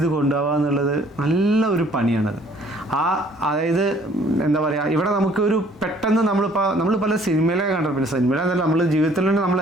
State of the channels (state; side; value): normal; both; correlation 0.58